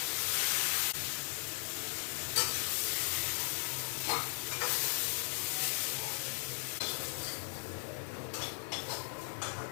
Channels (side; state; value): right; silent; digital silence